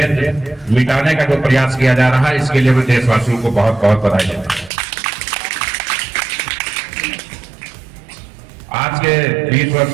मिटाने का जो प्रयास किया जा रहा है, इसके लिए मैं देशवासियों को बहुत बहुत बधाई देता हूं। आज के 20 वर्ष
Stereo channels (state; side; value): drops out; left; at 4.7 s